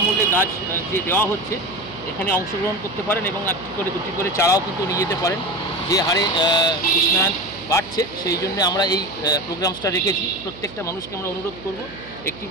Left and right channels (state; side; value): noise; right; hum, 17 dB below the sound